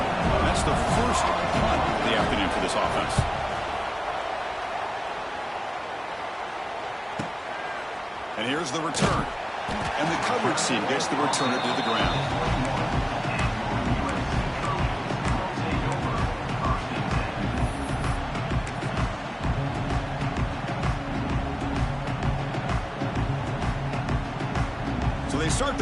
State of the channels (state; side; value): identical; both; correlation 1.00